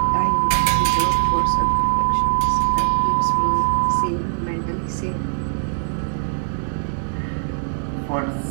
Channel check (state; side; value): silent; left; digital silence